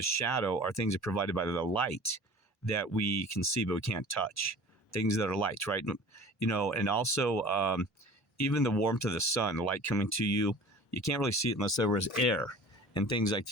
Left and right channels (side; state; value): both; normal; correlation 0.43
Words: shadow, are things that are provided by the light that we can see but we can't touch. Things that are light, right? And also even the warmth of the sun, the light coming to you, you can't really see it unless there was air and things like